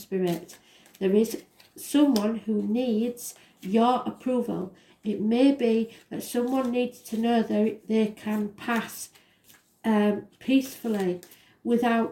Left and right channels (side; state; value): both; identical; correlation 1.00